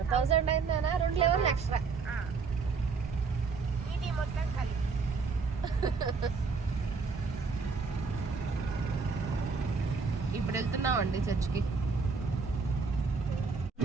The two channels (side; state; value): left; quieter; 4.7 dB